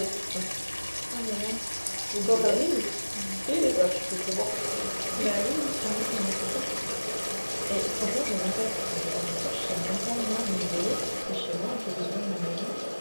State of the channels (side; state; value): both; inverted; correlation -1.00